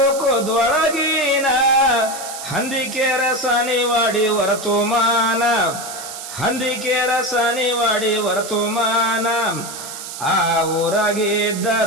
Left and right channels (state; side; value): noise; right; hiss, 10 dB below the sound